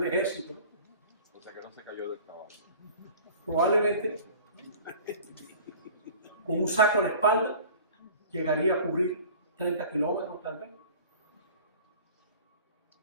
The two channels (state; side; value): inverted; both; correlation -0.44